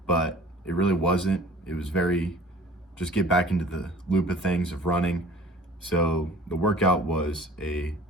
but it really wasn't. It was very, just get back into the loop of things of running. So the workout was a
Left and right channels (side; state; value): both; normal; correlation 0.47